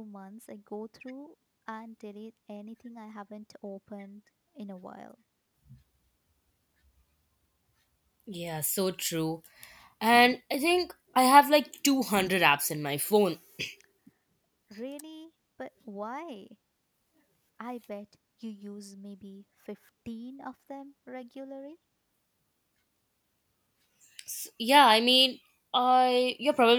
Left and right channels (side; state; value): both; identical; correlation 1.00